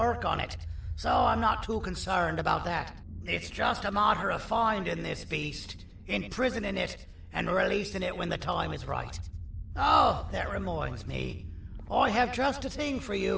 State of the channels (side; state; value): both; identical; correlation 1.00